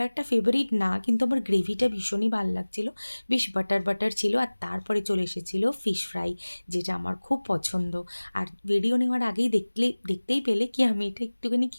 ফেভারিট না, কিন্তু আমার গ্রেভিটা ভীষণই ভাল লাগছিলো। বেশ বাটার, বাটার ছিল। আর তারপরে চলে এসেছিলো ফিশ ফ্রাই, যেটা আমার খুব পছন্দ। আর ভিডিও নেওয়ার আগেই দেখতেই পেলে কি আমি এটা একটুখানি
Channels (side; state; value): both; inverted; correlation -1.00